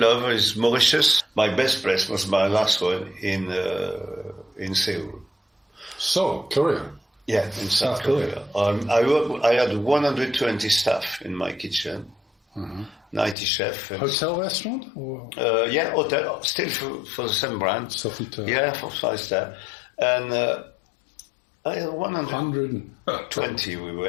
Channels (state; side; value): drops out; right; at 13.4 s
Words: is Mauritius. My best place was my last one in Seoul. So, Korea. Yeah, in South Korea. I had 120 staff in my kitchen, 90 chefs. Hotel restaurant? Or? Yeah, hotel, still for the same brand. Sofitel. Yeah, for 5-star. And I had 120 we